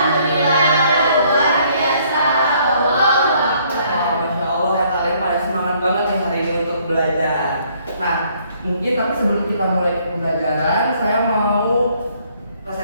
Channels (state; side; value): inverted; both; correlation -0.65